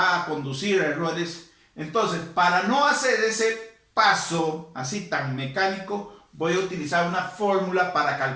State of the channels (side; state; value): both; identical; correlation 1.00